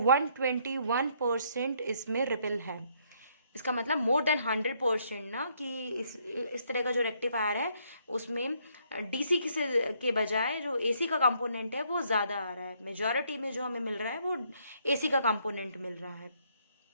इसमें रिपल है। इसका मतलब मोर देन 100% ना, कि इस तरह का जो रेक्टिफायर है उसमें डीसी के बजाय जो एसी का कंपोनेंट है वो ज़्यादा आ रहा है। मेजॉरिटी में जो हमें मिल रहा है वो एसी का कंपोनेंट मिल रहा है।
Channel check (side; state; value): both; inverted; correlation -0.69